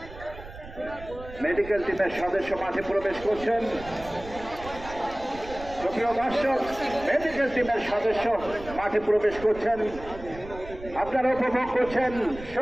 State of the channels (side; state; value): right; noise; rumble, 15 dB below the sound